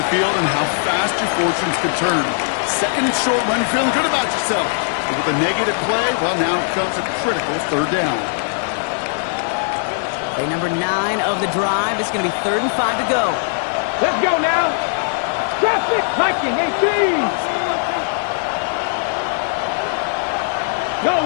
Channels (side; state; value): right; silent; digital silence